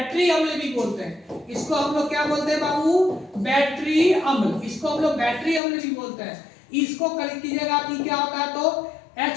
अम्ल भी बोलते हैं। इसको हम लोग क्या बोलते हैं बाबू, बैटरी अम्ल, इसको हम लोग बैटरी अम्ल भी बोलते हैं। इसको कलेक्ट कीजिएगा आप, क्या होता है, तो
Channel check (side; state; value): right; drops out; at 5.6 s